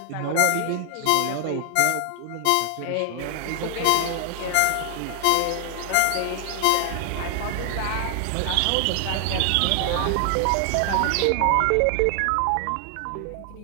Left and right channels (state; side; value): different; both; correlation 0.00